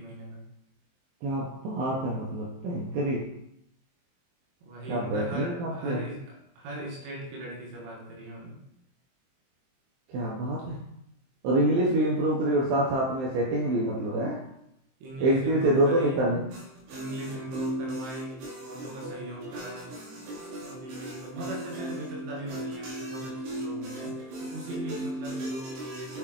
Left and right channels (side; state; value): left; late; 23 ms